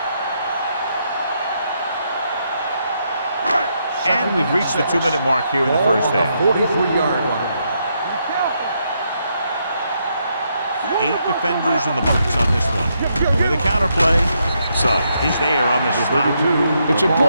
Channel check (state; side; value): inverted; both; correlation -0.78